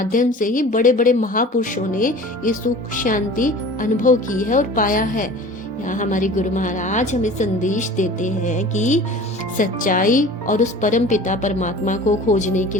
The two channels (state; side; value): normal; both; correlation 0.41